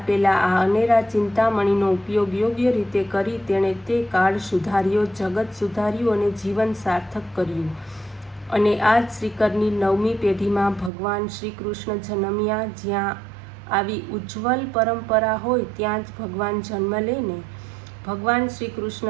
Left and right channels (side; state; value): left; drops out; at 10.9 s